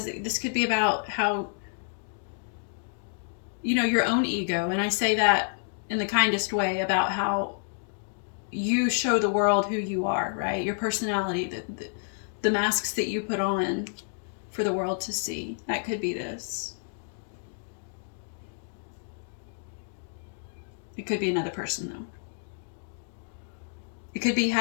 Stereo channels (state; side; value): silent; right; digital silence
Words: this could be about how, you know, your own ego. And I say that in the kindest way, about how you show the world who you are, right? Your personality, the masks that you put on for the world to see. That could be this. It could be another person, though. It could be